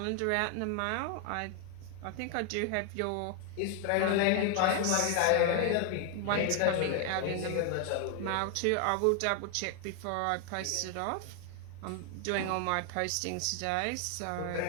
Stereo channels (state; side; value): different; both; correlation 0.00